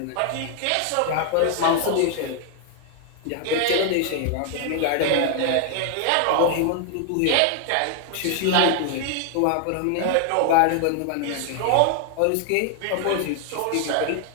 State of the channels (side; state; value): both; different; correlation 0.00